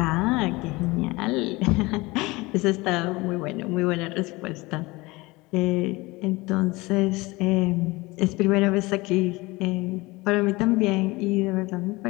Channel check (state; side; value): quieter; right; 22.5 dB